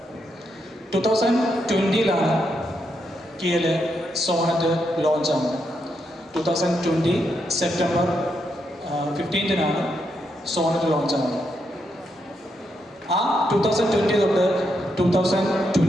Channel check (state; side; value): normal; both; correlation 0.81